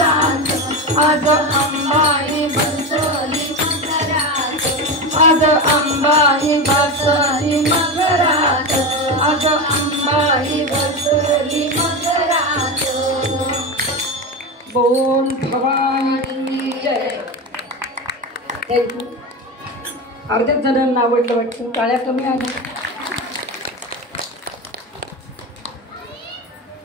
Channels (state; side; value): normal; both; correlation 0.19